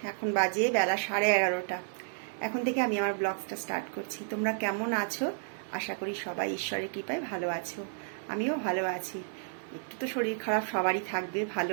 এখন বাজে বেলা 11:30। এখন থেকে আমি আমার ব্লগটা স্টার্ট করছি। তোমরা কেমন আছো? আশা করি সবাই ঈশ্বরের কৃপায় ভালো আছো। আমিও ভালো আছি। একটু তো শরীর খারাপ সবারই থাকবে, ভালো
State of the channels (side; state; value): left; silent; 57 dB below the other